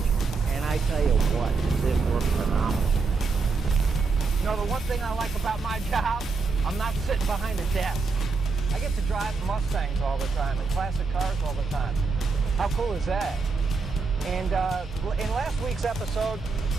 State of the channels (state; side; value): quieter; left; 4.3 dB